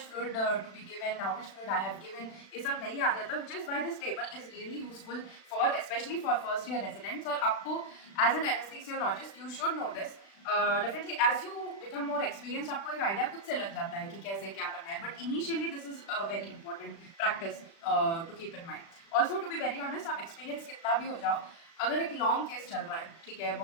fluid to be given, how much fluid I have given, ये सब नहीं याद रहता। Which is why this table is really useful for specially for first year residents. और आपको as an anaesthesiologist you should know this. Definitely as you become more experience आपको एक आइडिया खुद से लग जाता है कि कैसे क्या करना है, but initially this is a very important practice to keep in mind. Also to be very honest, आप एक्सपीरियंस कितना भी हो जाओ, अगर एक लॉन्ग केस चल रहा है, ठीक है,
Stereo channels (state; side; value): late; right; 36 ms